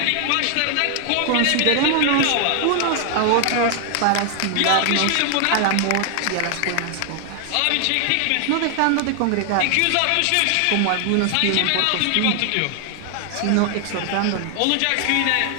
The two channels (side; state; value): both; different; correlation 0.00